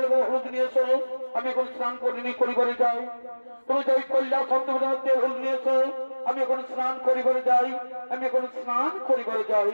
এবং হলুদ নিয়ে এসো আমি এখন স্নান করিনি করিবারে যাই তুমি যাই কৈলাস অন্তপুর তেল হলুদ নিয়ে এসো আমি এখন স্নান করিবারে যাই আমি এখন স্নান করিবারে যাই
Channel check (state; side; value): inverted; both; correlation -1.00